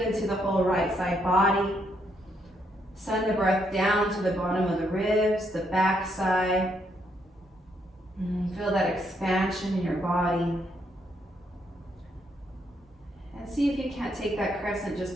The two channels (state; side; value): normal; both; correlation 0.75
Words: into the whole right side body. Send the breath down to the bottom of the ribs, the back side. Feel that expansion in your body. And see if you can't take that crescent just